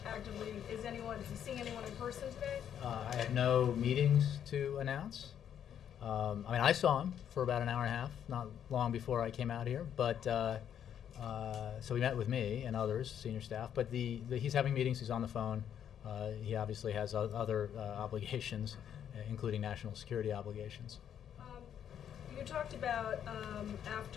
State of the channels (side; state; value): right; quieter; 9.3 dB